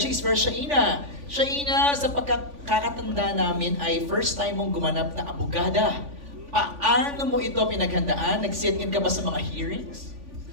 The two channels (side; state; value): left; late; 3.5 ms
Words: is for Shaina. Shaina, sa pagkakatanda namin ay first time mong gumanap na abogada. Paano mo ito pinaghandaan? Nag-sit-in ka ba sa mga hearings?